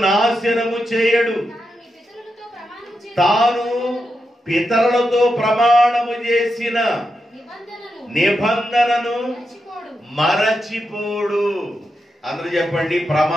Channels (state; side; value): normal; both; correlation 0.86